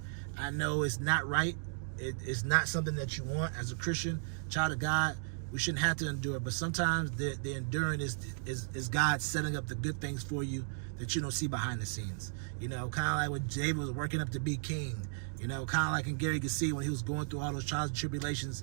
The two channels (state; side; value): silent; left; digital silence